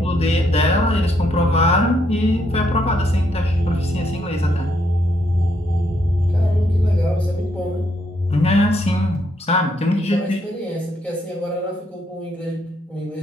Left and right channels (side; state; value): both; normal; correlation 0.74